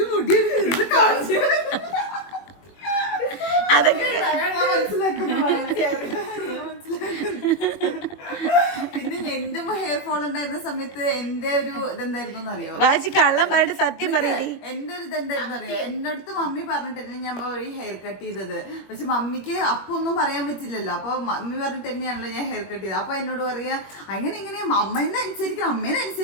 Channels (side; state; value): right; late; 21 ms